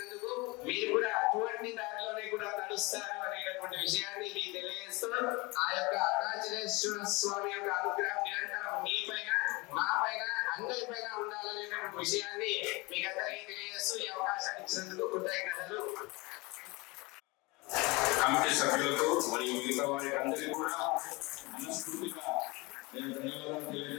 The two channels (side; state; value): right; quieter; 25.0 dB